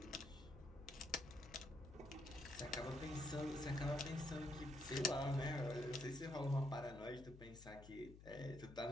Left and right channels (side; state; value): left; noise; hum, 15 dB below the sound